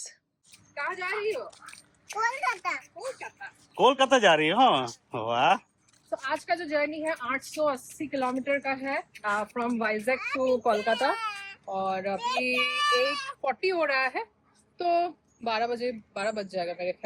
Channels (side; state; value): both; identical; correlation 1.00